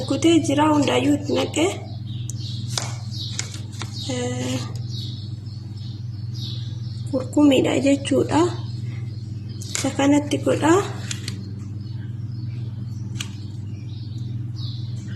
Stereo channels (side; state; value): both; identical; correlation 1.00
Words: jira, hundaayyuu itti naqee kurkumiidha jechuudha. Isa kanatti godha.